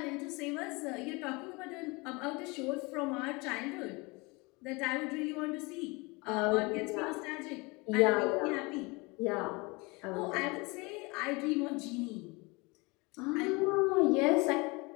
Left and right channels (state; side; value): quieter; right; 26.3 dB